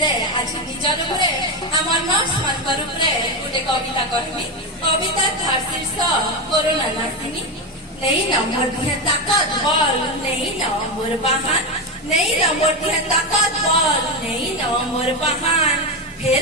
आज निजर उपरे आमर नर्स मानकर उपरे गोटे कविता कहमी कविता थार शीर्ष कोरोना नासिनी नहीं न मोर दिहे ताकत बल नहीं न मोर बहान नहीं न मोर दिहे ताकत बल नहीं न मोर बहान फिर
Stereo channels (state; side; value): normal; both; correlation 0.12